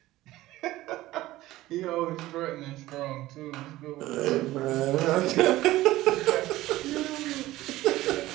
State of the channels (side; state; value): left; quieter; 16.7 dB